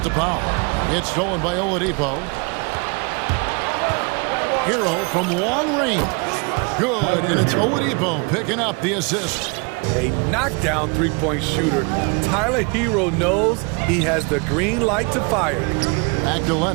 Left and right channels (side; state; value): left; quieter; 31.8 dB